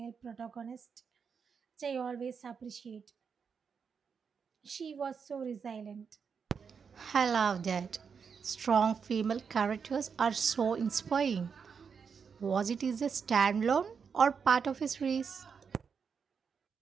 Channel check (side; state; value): left; quieter; 6.2 dB